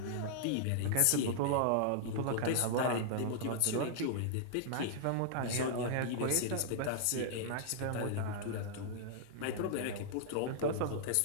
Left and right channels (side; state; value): both; different; correlation -0.01